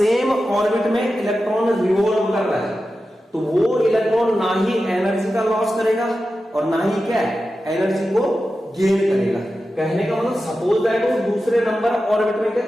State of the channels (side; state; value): both; normal; correlation 0.92